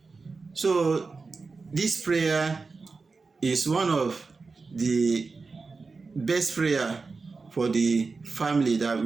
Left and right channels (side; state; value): left; quieter; 4.3 dB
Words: So this prayer is one of the best prayer for the family that